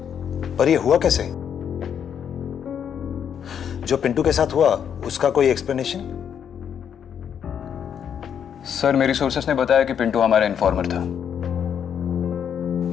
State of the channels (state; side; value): quieter; right; 8.3 dB